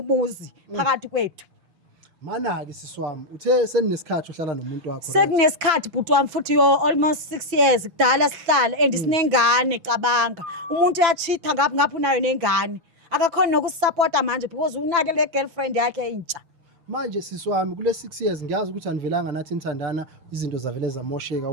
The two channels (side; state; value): left; late; 6.1 ms